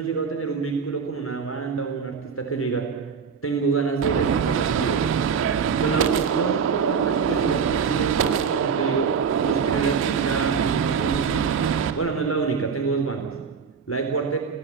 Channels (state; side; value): quieter; left; 6.2 dB